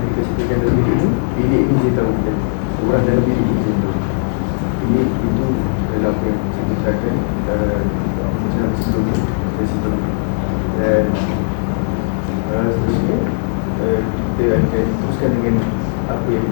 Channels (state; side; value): silent; right; digital silence